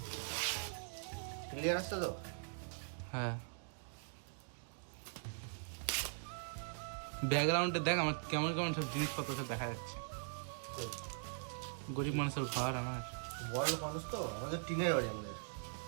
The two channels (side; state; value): left; silent; digital silence